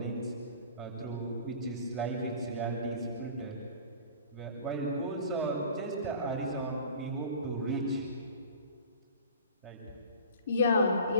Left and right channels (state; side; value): inverted; both; correlation -0.42